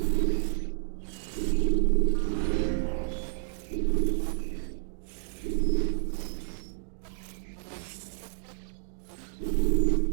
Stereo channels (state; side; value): silent; left; digital silence